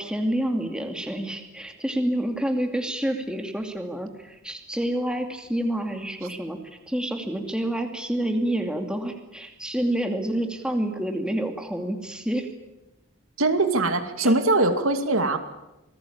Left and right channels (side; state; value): both; normal; correlation 0.47